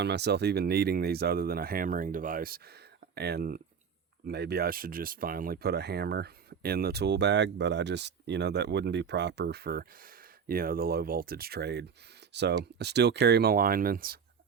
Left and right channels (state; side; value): quieter; left; 6.7 dB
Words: myself even needing these other than a hammering device. And maybe I should just finally put a hammer in the tool bag, but I just, you know, that wouldn't be proper for, you know, the low voltage trade. So I still carry my linemans.